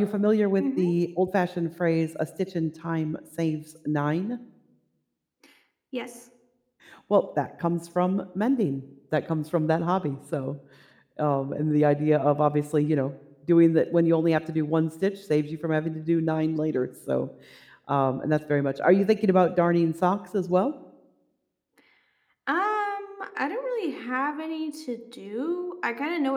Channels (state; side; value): identical; both; correlation 1.00